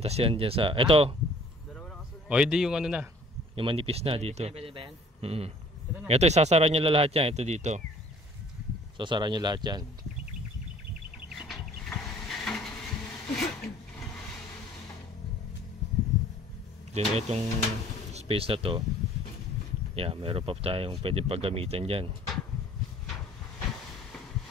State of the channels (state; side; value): normal; both; correlation 0.54